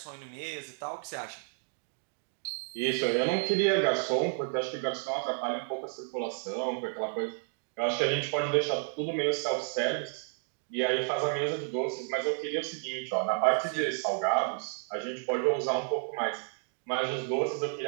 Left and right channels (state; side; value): silent; left; 57 dB below the other